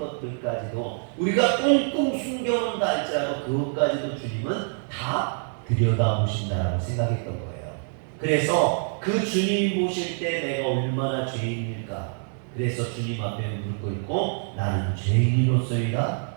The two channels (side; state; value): left; silent; 60 dB below the other